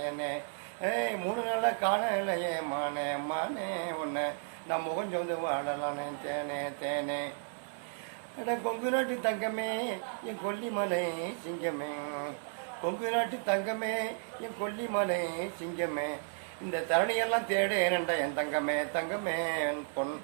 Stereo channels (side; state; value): left; silent; 55 dB below the other